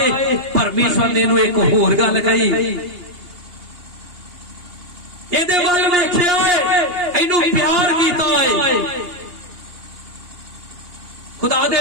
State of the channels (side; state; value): left; late; 2.8 ms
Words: ਪਰਮੇਸ਼ਰ ਨੇ ਇਹਨੂੰ ਇੱਕ ਹੋਰ ਗੱਲ ਕਹੀ, ਇਹਦੇ ਵੱਲ ਵੇਖਿਆ ਏ, ਇਹਨੂੰ ਪਿਆਰ ਕੀਤਾ ਏ। ਖੁਦਾ